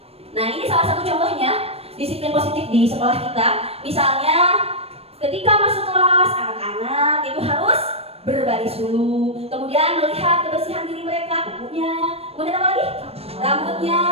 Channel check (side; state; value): left; late; 0.29 ms